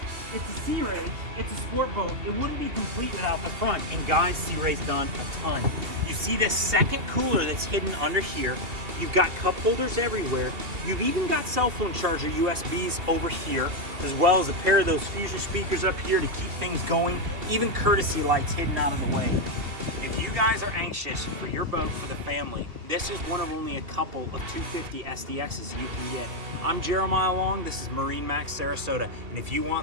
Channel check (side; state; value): left; late; 2.7 ms